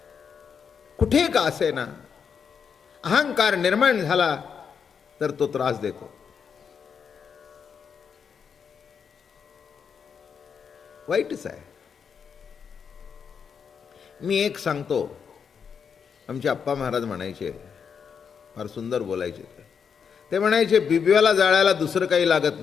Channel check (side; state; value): right; quieter; 6.7 dB